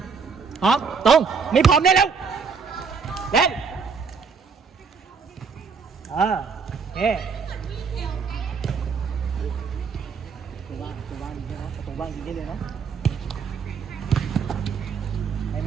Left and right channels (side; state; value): left; quieter; 5.5 dB